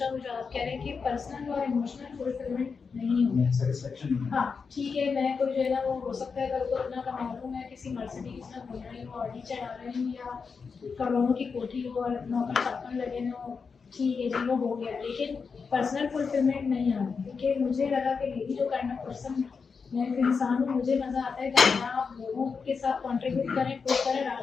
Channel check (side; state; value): right; quieter; 5.3 dB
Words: वो जो आप कह रहे हैं कि पर्सनल और इमोशनल फुलफिलमेंट नहीं होगा। सेटिस्फेक्शन हाँ ठीक है, मैं कोई जो है ना वो हो सकता है कल को इतना कमा लूँ, मैं किसी मर्सिडीज में घूम रही हूँ, ऑडी चढ़ा रही हूँ या करोड़ों की कोठी हो और नौकर चाकर लगे हो, ठीक है जी वो हो गया, लेकिन पर्सनल फुलफिलमेंट नहीं आ रही। क्योंकि मुझे लगा कि मेरी जो काइंड ऑफ पर्सन मैं एक इंसान हूँ, मुझे मज़ा आता है कि आप लोगों के साथ कंट्रीब्यूट करें, पुश करें,